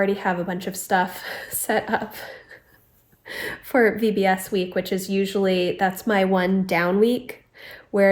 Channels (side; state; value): both; identical; correlation 1.00